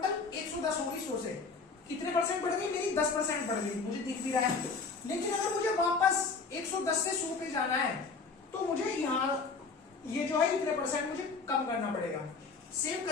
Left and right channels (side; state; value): right; quieter; 4.6 dB